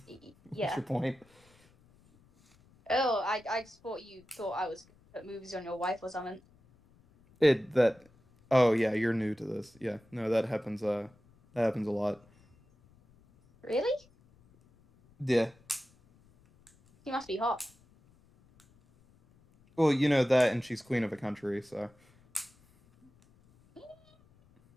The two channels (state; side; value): noise; left; rumble, 30 dB below the sound